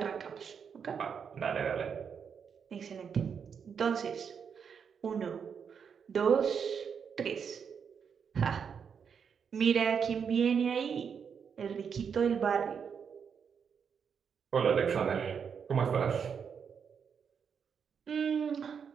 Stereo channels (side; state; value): left; quieter; 6.9 dB